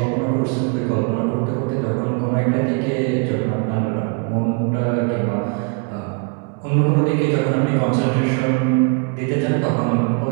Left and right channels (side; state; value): left; quieter; 35.4 dB